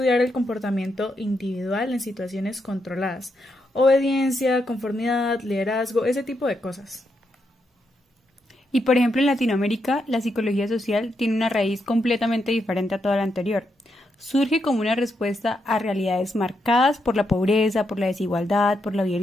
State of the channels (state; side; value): normal; both; correlation 0.81